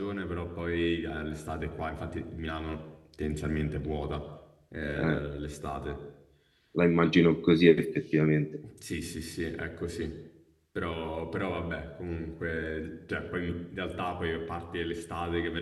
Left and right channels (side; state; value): both; identical; correlation 1.00